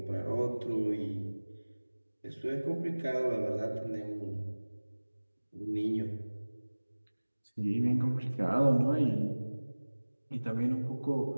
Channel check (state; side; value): inverted; both; correlation -1.00